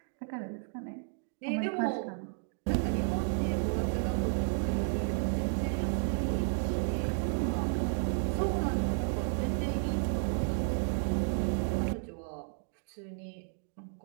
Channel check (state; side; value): silent; left; 56 dB below the other